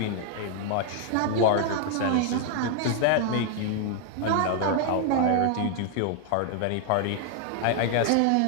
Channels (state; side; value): different; both; correlation 0.00